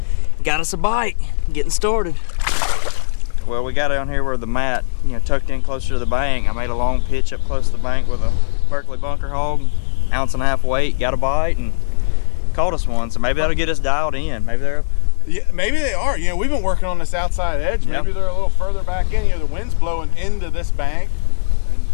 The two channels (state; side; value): silent; right; 68 dB below the other